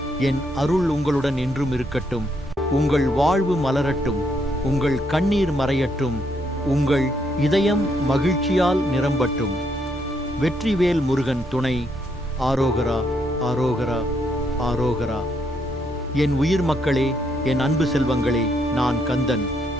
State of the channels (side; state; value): both; normal; correlation 0.74